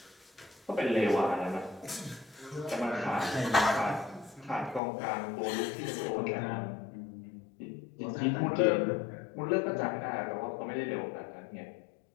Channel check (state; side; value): drops out; right; at 4.8 s